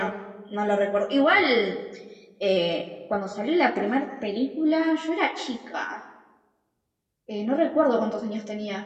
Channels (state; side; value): identical; both; correlation 1.00